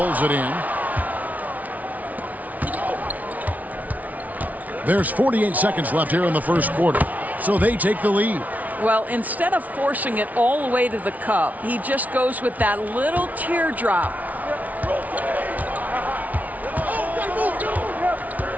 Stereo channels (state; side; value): late; left; 0.073 ms